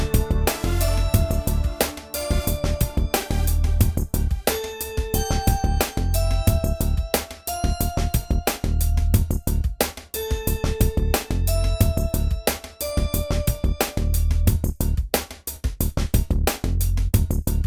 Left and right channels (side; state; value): both; identical; correlation 1.00